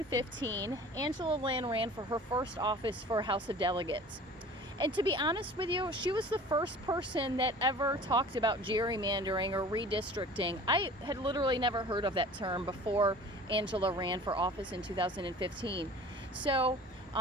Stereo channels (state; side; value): normal; both; correlation 0.43